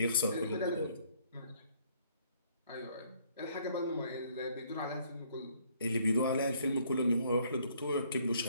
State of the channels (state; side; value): inverted; both; correlation -0.64